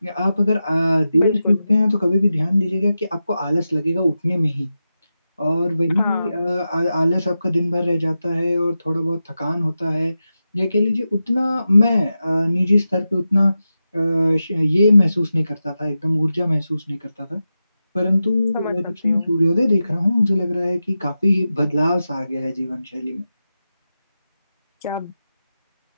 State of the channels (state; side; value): inverted; both; correlation -0.91